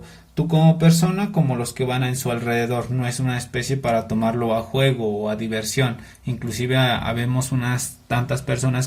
tú como persona como los que van en su alrededor. No es una especie para tomarlo a juego o a diversión. Inclusive habemos unas tantas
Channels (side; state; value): both; identical; correlation 1.00